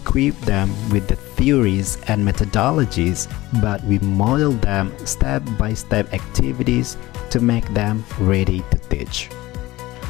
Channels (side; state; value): right; quieter; 18.5 dB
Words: them with the theories and methodologies, but we model them step-by-step activities to make them ready to teach.